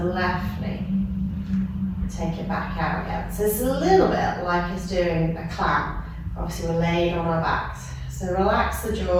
knee. Take it back out again. So it's a little bit like it's doing a clam. Obviously we're laid on our backs. So relax the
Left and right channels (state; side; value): identical; both; correlation 1.00